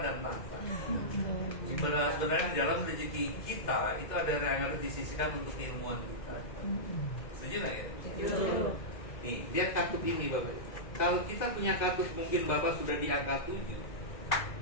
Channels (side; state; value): right; late; 2.0 ms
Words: tahta. Sebenarnya di dalam rezeki kita itu ada yang harus disisihkan untuk keilmuan kita. Setuju nggak ya? Nih, lihat kartu ini Bapak. Kalau kita punya kartu, mungkin Bapak sudah di angka 7.